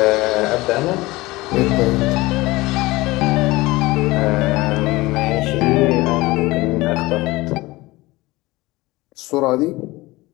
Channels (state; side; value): quieter; right; 20.4 dB